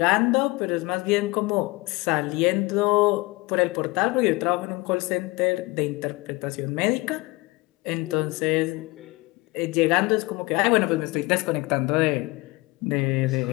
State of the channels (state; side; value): quieter; right; 23.3 dB